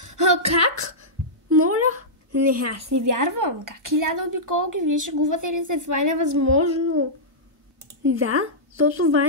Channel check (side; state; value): both; normal; correlation -0.13